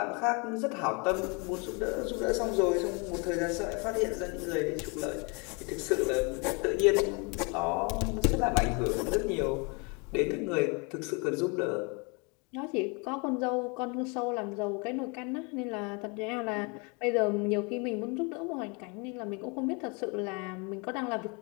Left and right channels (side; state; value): right; quieter; 31.6 dB